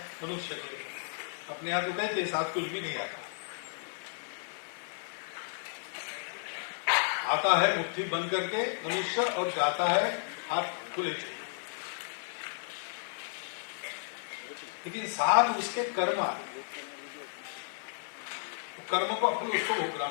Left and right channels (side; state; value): right; silent; 56 dB below the other